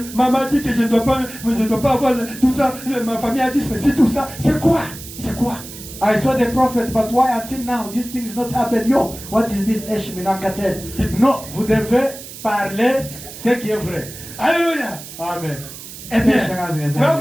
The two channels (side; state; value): right; noise; hiss, 14 dB below the sound